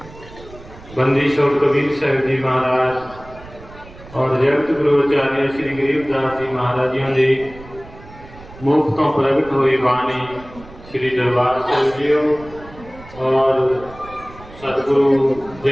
बंदी छोड़ कबीर साहिब जी महाराज और जगत गुरुचार्य श्री गरीबदास जी महाराज जी की मुख तो प्रगट हुई बाणी श्री दरबार साहिब जी और सतगुरु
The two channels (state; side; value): noise; right; rumble, 19 dB below the sound